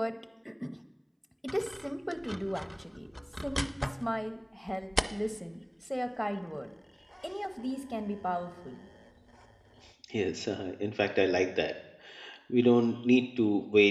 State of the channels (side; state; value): both; identical; correlation 1.00